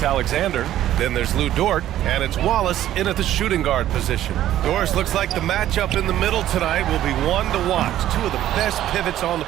Then there's Lou Dort, and it's Wallace in at the shooting guard position. Doris, looks like the matchup in the middle tonight will be one to watch. Two of the best pivots on the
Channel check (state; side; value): quieter; left; 12.7 dB